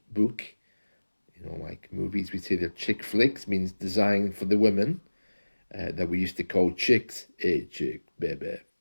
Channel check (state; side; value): inverted; both; correlation -1.00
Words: book, like movies, we say they're chick flicks, means designed for the women that we used to call chicks. Hey, chick, baby.